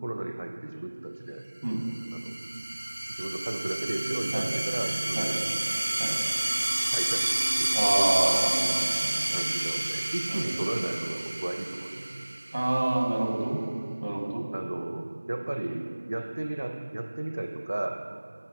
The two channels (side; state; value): both; inverted; correlation -1.00